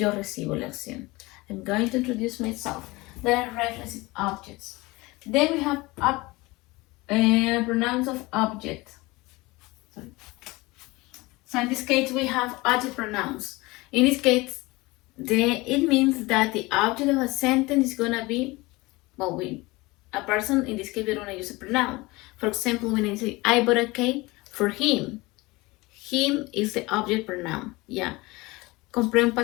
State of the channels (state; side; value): quieter; right; 22.4 dB